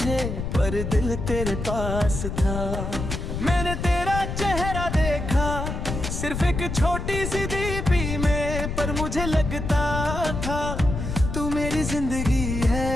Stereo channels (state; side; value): noise; left; rumble, 4 dB below the sound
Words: पर दिल तेरे पास था। मैंने तेरा चेहरा देखा सिर्फ एक छोटी सी दीपी में, पर मुझे लगता था तू मेरी जिंदगी है।